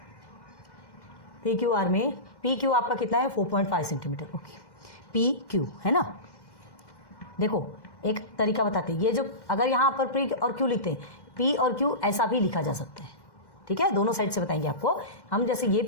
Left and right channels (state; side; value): late; right; 1.1 ms